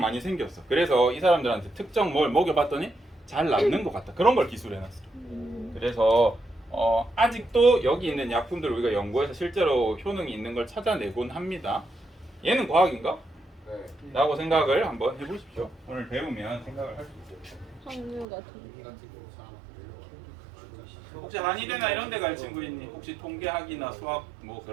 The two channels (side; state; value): left; drops out; at 18.2 s